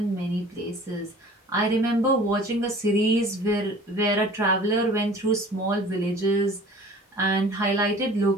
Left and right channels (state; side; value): normal; both; correlation 0.46